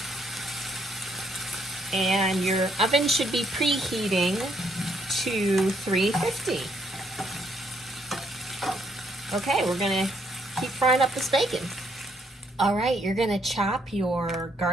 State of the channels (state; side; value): normal; both; correlation 0.71